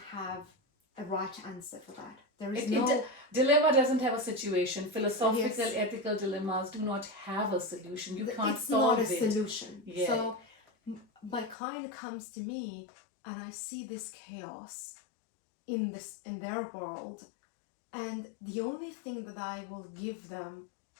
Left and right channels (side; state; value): right; drops out; at 11.6 s